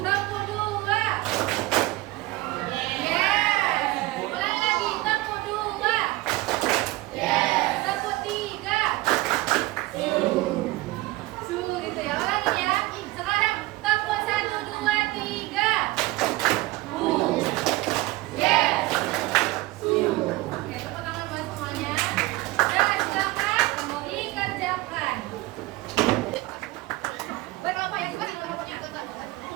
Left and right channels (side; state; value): left; quieter; 19.7 dB